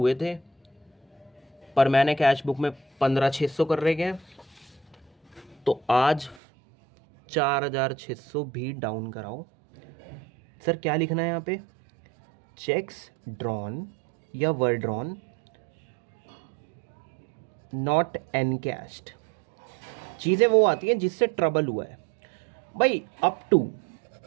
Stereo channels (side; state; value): left; drops out; at 6.4 s